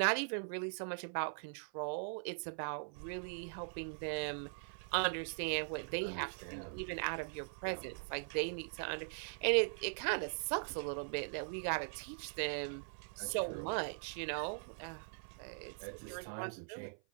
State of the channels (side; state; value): left; silent; 50 dB below the other